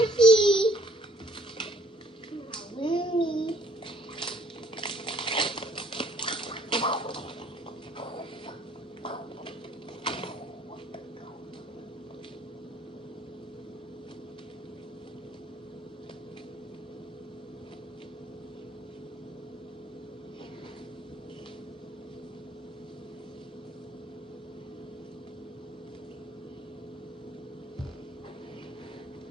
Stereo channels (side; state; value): both; normal; correlation 0.61